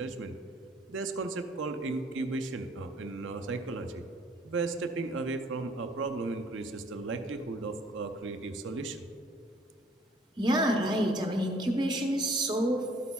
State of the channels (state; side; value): normal; both; correlation 0.59